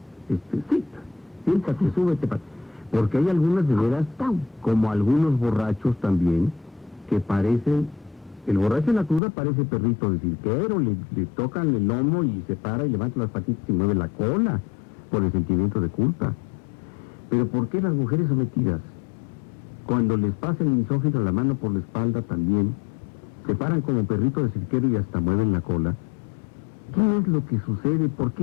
Siéntate, súbete, porque hay algunas de veras, como algunos borrachos también, que parecen El borracho en la cruda parece perrito de cirquero, le tocan el lomo y se para y levanta las patitas y mueve la cola por el sentimiento de culpa. Pero ¿por qué las mujeres sometidas, cuando les pasa el misógino la mano por la espalda también, se paran como perrito de cirquero y hasta mueven la cola? ¿Qué es lo que sucede? ¿Por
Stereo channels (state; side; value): drops out; right; at 9.2 s